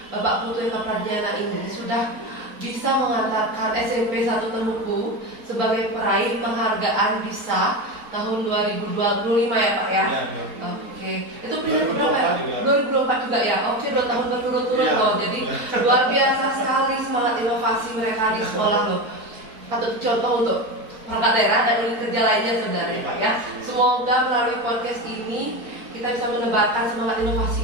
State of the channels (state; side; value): late; left; 4.3 ms